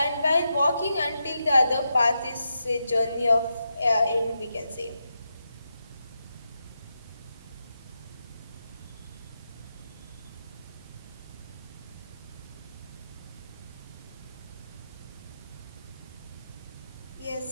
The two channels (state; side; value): inverted; both; correlation -0.86